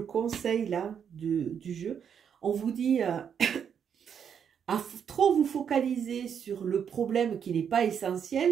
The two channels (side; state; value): left; quieter; 7.8 dB